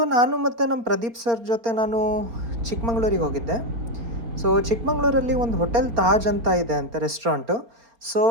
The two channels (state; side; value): late; left; 4.3 ms